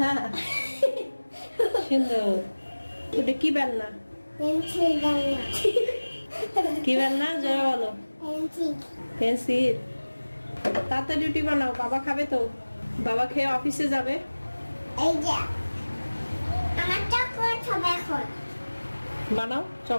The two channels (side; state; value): both; inverted; correlation -1.00